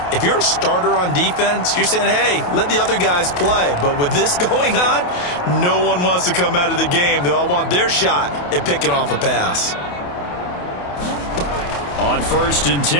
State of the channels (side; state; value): right; late; 28 ms